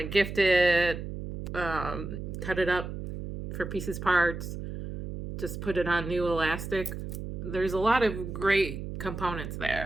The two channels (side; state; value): right; noise; hum, 7 dB below the sound